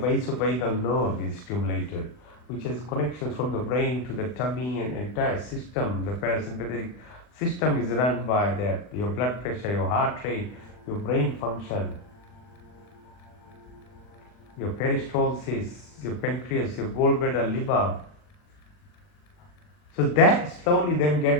nerve is stimulated, which has connections from the brain to the tummy and entire system. The parasympathetic system is run by that, your blood pressure, your heart rate, your brain function, your peristalsis, your pancreas, your gallbladder, liver. So that slowly then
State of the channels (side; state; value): right; late; 40 ms